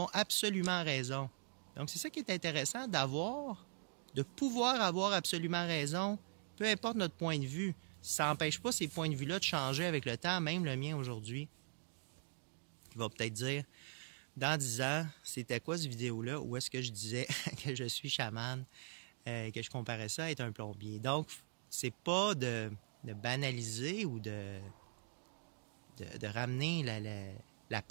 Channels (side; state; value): left; silent; digital silence